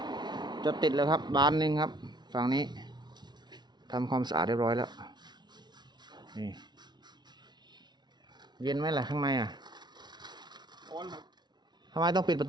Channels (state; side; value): late; left; 0.20 ms